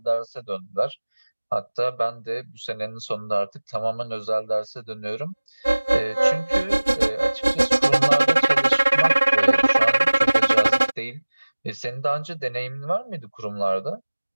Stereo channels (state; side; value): inverted; both; correlation -1.00